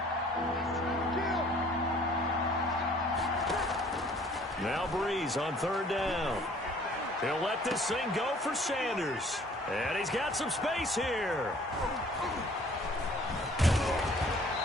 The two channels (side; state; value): both; normal; correlation 0.55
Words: Now Breeze on 3rd down. He'll let this thing go for Sanders. And he's got some space here.